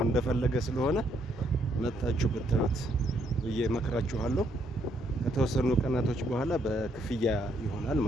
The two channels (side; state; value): both; normal; correlation 0.72